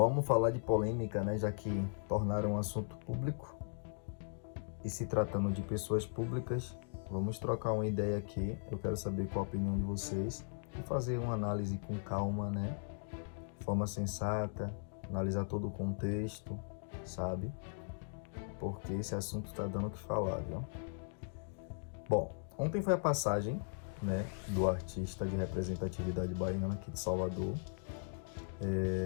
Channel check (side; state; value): right; silent; digital silence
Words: falar de polêmica, né? Já que tornaram um assunto público e se tratando de pessoas públicas, vamos trocar uma ideia aqui. Eu quero saber qual a opinião de vocês e fazer uma análise com calma, né? De forma sensata, analisar todo o contexto, sabe? Porque esse assunto está dando o que falar, viu? Bom, ontem foi a passagem, né, do artista de representatividade baiana aqui de Salvador,